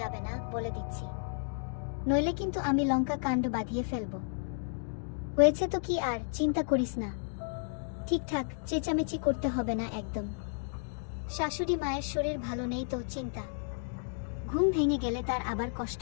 না বলে দিচ্ছি, নইলে কিন্তু আমি লঙ্কা কাণ্ড বাঁধিয়ে ফেলবো। হয়েছে তো কি, আর চিন্তা করিস না, ঠিকঠাক চেঁচামেচি করতে হবে না একদম। শাশুড়ি মায়ের শরীর ভালো নেই তো চিন্তা, ঘুম ভেঙে গেলে তার আবার কষ্ট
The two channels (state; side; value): silent; right; digital silence